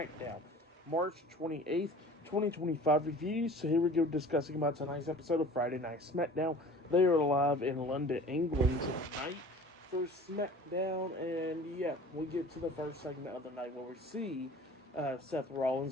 March 28th, 2025 reviews. So here we go, discussing about tonight's episode of Friday Night SmackDown. They are live in London, England tonight for SmackDown, and yeah, we get to the first segment of the night where we see Seth Rollins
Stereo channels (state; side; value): normal; both; correlation 0.44